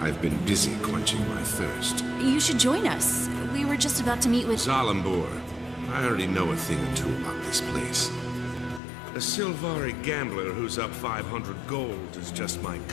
been busy quenching my thirst. You should join us. We were just about to meet with... Zalambor. I already know a thing or two about this place. A Silvari gambler who's up 500 gold is just my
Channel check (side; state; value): right; drops out; at 8.8 s